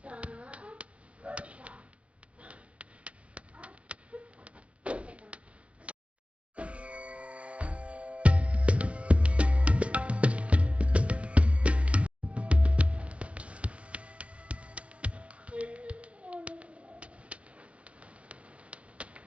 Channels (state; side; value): late; left; 0.062 ms